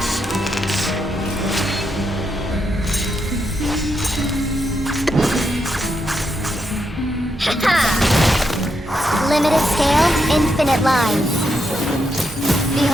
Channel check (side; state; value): both; normal; correlation 0.82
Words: Limited scale, infinite lines.